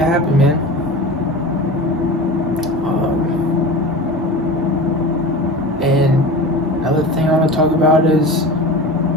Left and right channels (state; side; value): normal; both; correlation 0.32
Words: happen, man. And another thing I want to talk about is